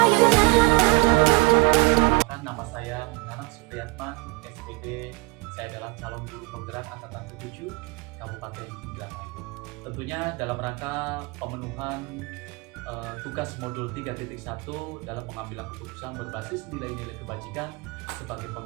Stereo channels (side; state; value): left; quieter; 24.9 dB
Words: you now? Nama saya Nanak Supriyatman, SPD. Saya adalah calon guru penggerak angkatan ke-7 Kabupaten Indramayu. Tentunya dalam rangka pemenuhan tugas modul 3.1 dalam pengambilan keputusan berbasis nilai-nilai kebajikan sebagai